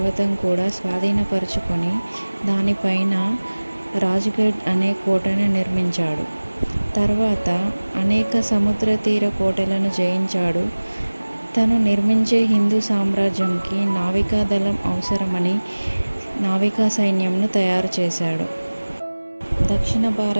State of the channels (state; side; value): inverted; both; correlation -1.00